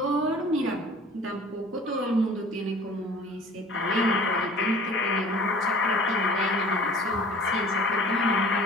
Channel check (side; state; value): both; normal; correlation 0.46